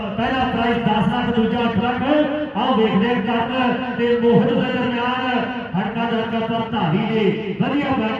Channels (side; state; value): both; identical; correlation 1.00